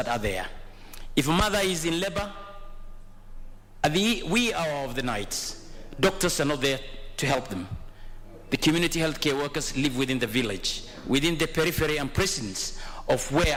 are there. If a mother is in labor, at the wee hour of the night, doctors are not there to help them. The community healthcare workers live within the village, within the periphery and precincts of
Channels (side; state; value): both; identical; correlation 1.00